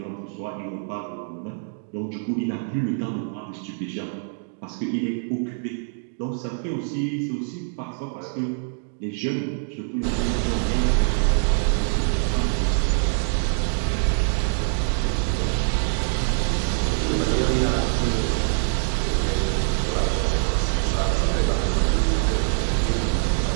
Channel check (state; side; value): silent; left; 62 dB below the other